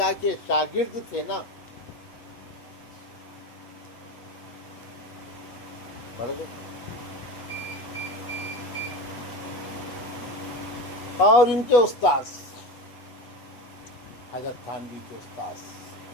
کے شاگرد تھے نا، پڑھ گئے۔ اور ان کے استاذ حضرت تھانوی کے استاذ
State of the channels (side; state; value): right; late; 8.2 ms